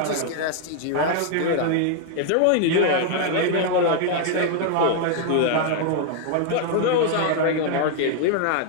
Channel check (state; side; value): different; both; correlation 0.00